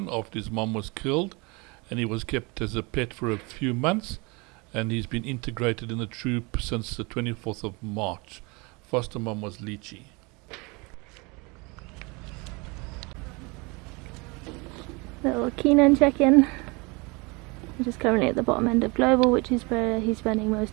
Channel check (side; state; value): left; quieter; 27.8 dB